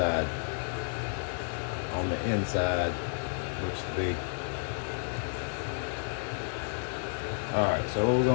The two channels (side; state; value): right; silent; 57 dB below the other